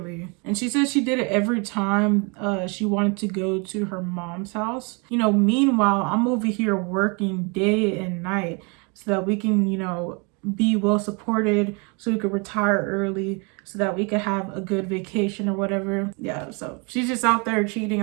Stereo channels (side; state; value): left; quieter; 32.1 dB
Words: And she said she did it every time she wanted to go to her mom's house. Meanwhile, I'm over here working day and night so that we can, be well supported, so we could retire early, so that we could have a good vacation or whatever. Yeah, so she's just out there cheating.